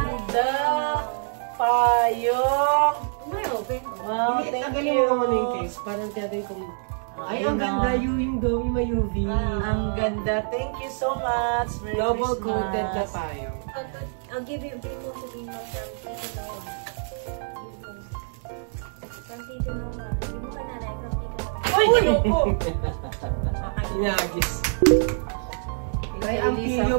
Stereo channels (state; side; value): silent; left; digital silence